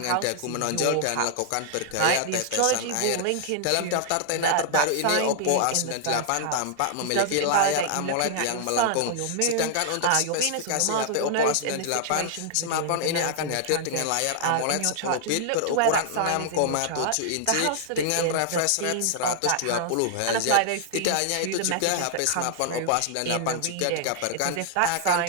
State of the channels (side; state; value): both; different; correlation -0.01